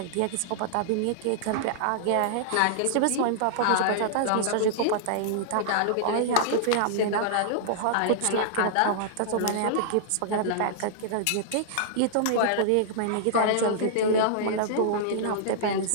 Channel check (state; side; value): different; both; correlation -0.01